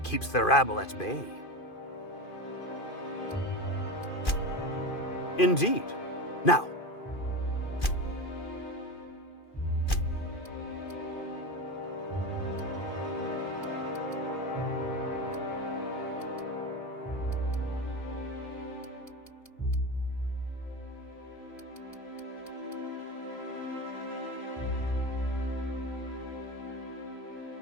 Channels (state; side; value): late; right; 2.5 ms